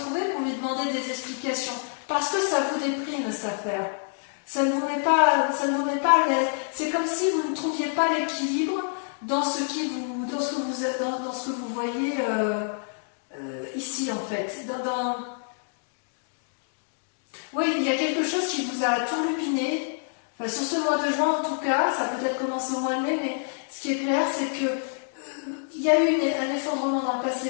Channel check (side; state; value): right; silent; 60 dB below the other